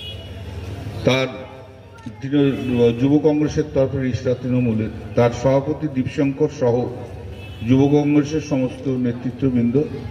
তার যুব কংগ্রেসের তরফে রিষ্টা তৃণমূলের তার সভাপতি দীপশঙ্কর সহ যুব কংগ্রেসের সমস্ত নেতৃত্ববৃন্দ,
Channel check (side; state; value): both; identical; correlation 1.00